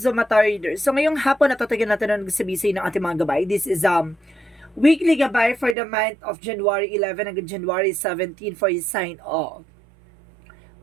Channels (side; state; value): left; drops out; at 5.8 s